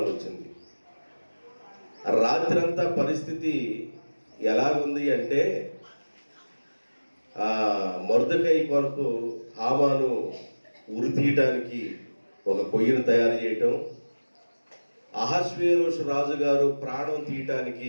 వచ్చింది. రాత్రంతా పరిస్థితి ఎలా ఉంది అంటే, మొర్దెకై కొరకు హామాను ఉరి తీయటానికి ఒక పొయ్యిని తయారు చేయటం, అహష్వేరోషు రాజుగారు ప్రాణం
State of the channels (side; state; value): both; inverted; correlation -1.00